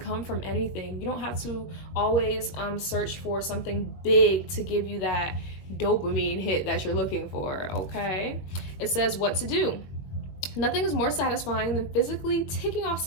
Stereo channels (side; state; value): right; late; 21 ms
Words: from anything. You don't have to always search for something big to give you that dopamine hit that you're looking for, okay? It says what to do. Nothing is more satisfying than physically ticking off